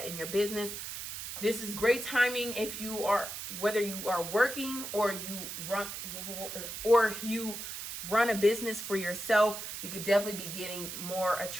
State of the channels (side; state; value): right; noise; hiss, 7 dB below the sound